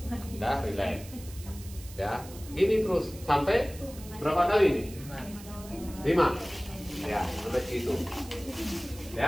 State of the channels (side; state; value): right; noise; hiss, 17 dB below the sound